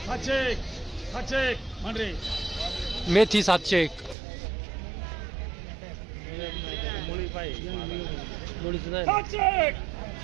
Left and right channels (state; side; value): drops out; left; at 4.2 s